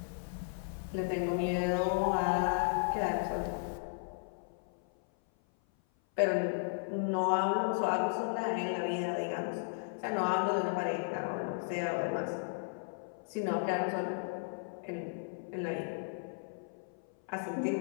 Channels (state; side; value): silent; right; 54 dB below the other